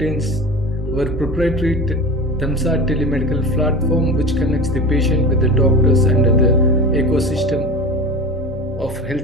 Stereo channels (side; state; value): both; normal; correlation 0.30